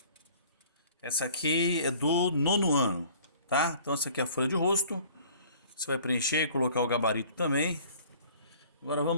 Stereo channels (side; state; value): both; inverted; correlation -0.52